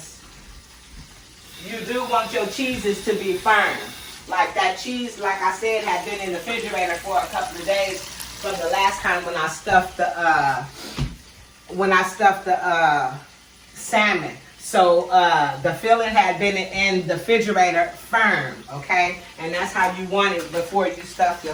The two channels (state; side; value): identical; both; correlation 1.00